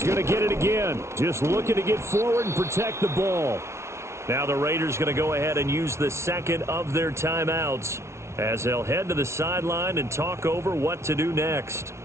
going to get it again. Just looking to get forward and protect the ball. Now the Raiders going to go ahead and use the 2nd of their timeouts as they'll head to the sideline and talk over what to do next.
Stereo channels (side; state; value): left; late; 0.13 ms